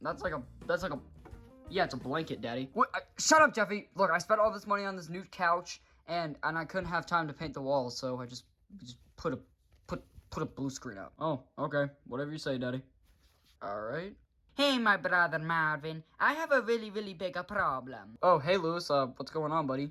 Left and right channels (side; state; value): both; identical; correlation 1.00